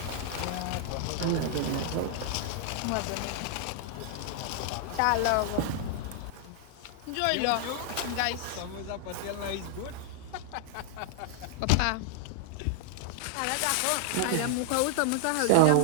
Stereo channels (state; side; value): different; both; correlation 0.00